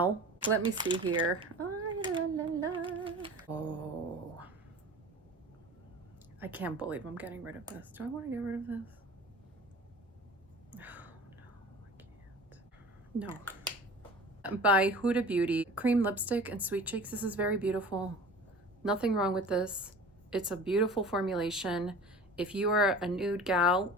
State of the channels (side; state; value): both; normal; correlation 0.40